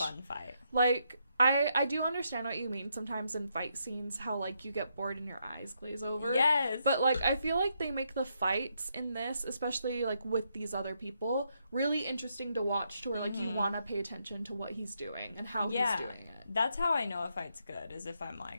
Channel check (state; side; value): inverted; both; correlation -0.78